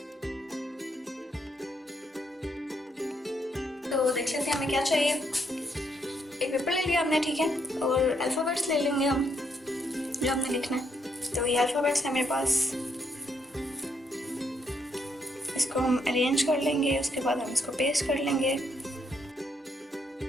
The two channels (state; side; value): normal; both; correlation 0.75